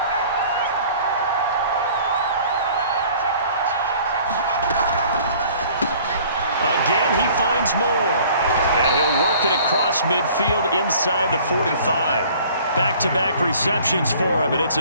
Again, he finds more. And he'll work it across midfield inside the 45. Back-to-back receptions for him, and it's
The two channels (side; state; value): both; inverted; correlation -0.52